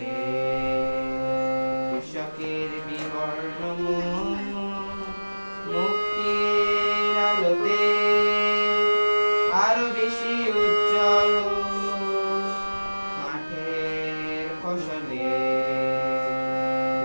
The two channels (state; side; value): inverted; both; correlation -1.00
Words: কৃষকের বিবর্ণ মুখ, মুক্তির আলোতে আরো বেশি উজ্জ্বল। মাঠের ফসলে